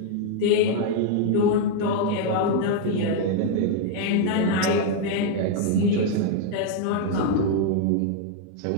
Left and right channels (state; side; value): different; both; correlation 0.00